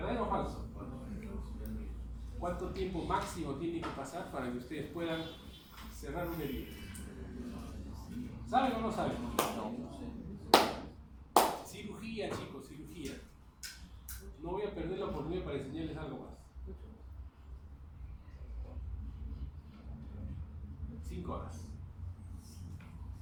o falso? ¿Cuánto tiempo máximo tiene que pasar para que ustedes puedan cerrar una herida? ¿Saben o no saben? Cirugía, chicos, cirugía. No voy a perder la oportunidad para enseñarles algo más. 5 horas.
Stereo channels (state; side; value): identical; both; correlation 1.00